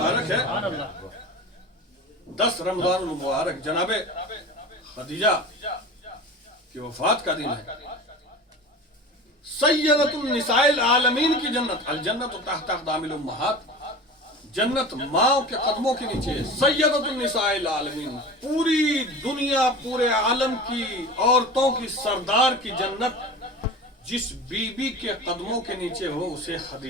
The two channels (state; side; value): normal; both; correlation 0.34